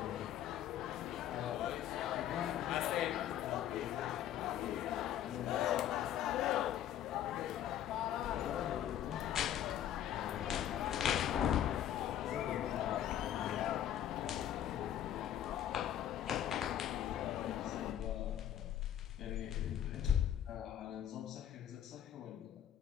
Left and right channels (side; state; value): right; quieter; 10.9 dB